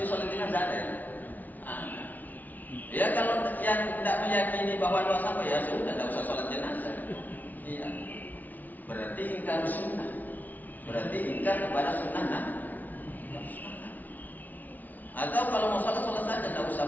sholat jenazah ada. Ya kalau yang tidak meyakini bahwa doa sampai ya sudah tidak usah sholat jenazah. Iya. Berarti ingkar sunnah. Berarti ingkar kepada sunnah. Atau kalau mau sholat saja, tidak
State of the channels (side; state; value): right; late; 0.079 ms